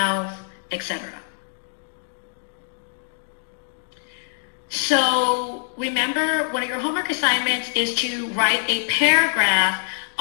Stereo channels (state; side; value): silent; right; digital silence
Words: etc. So remember, one of your homework assignments is to write a paragraph